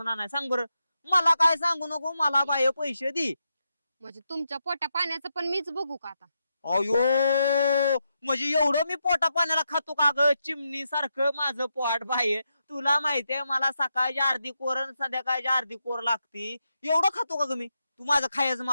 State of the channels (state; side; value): inverted; both; correlation -0.84